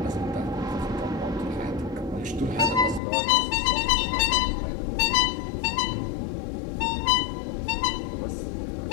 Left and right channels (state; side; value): drops out; right; at 3.0 s